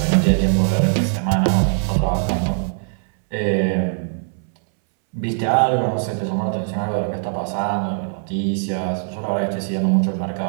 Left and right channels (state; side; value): silent; left; 65 dB below the other